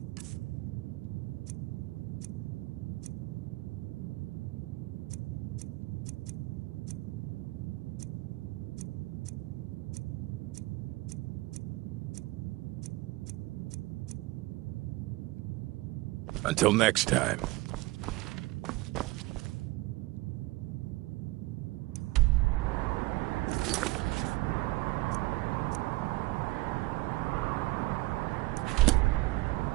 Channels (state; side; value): quieter; left; 20.5 dB